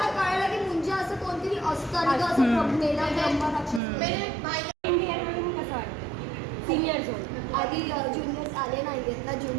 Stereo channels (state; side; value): drops out; left; at 3.8 s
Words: कळलं की मुंजा असं कोणतरी असतं आणि असं मेला ब्रह्मा राक्षस। कसं वाटतं सिनियर होऊन? आधी ज्युनियर्स आले नाही आहेत ना,